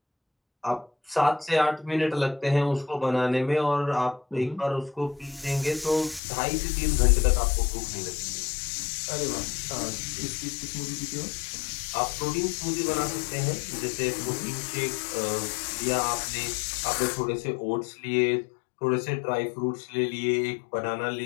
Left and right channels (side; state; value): right; drops out; at 6.2 s